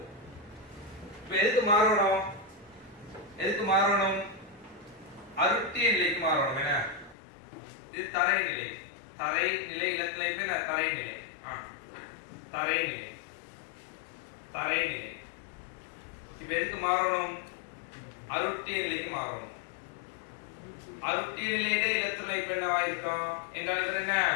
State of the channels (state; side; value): drops out; right; at 7.2 s